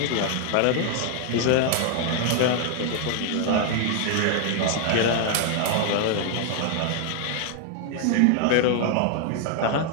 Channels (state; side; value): different; both; correlation 0.00